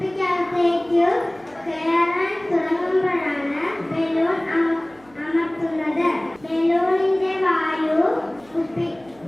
കയറാൻ തുടങ്ങുമ്പോഴാണ് ബലൂൺ അമർത്തുന്നത്. ബലൂണിന്റെ വായു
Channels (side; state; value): right; noise; hum, 28 dB below the sound